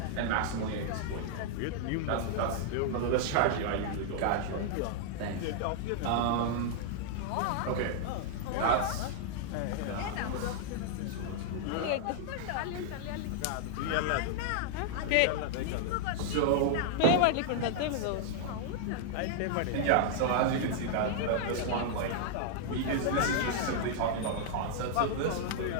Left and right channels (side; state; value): both; different; correlation -0.01